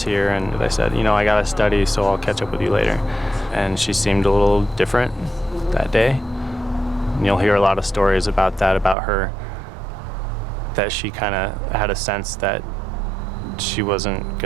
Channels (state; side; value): drops out; left; at 9.0 s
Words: here, and I said, you know, I gotta study, so I'll catch up with you later. And she seemed a little different that day. And you'll hear a lot of stories about that, about her, that she kind of had a sense that she wasn't